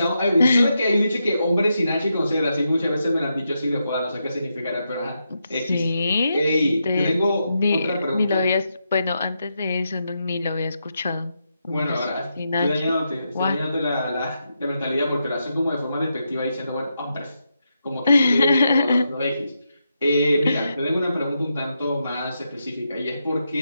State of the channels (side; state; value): both; inverted; correlation -0.84